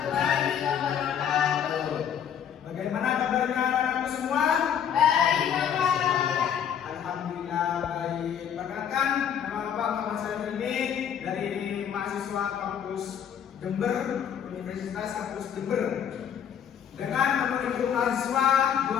wabarakatuh. Bagaimana kabarnya anak-anakku semua? Baik, Bapak. Alhamdulillah baik. Perkenalkan, nama Bapak Muhammad Salim ini dari mahasiswa kampus Jember, Universitas Kampus Jember. Dengan nomor induk mahasiswa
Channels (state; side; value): quieter; right; 8.6 dB